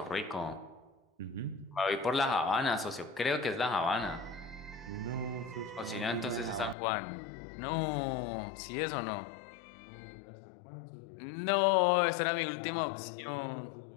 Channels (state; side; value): drops out; right; at 6.8 s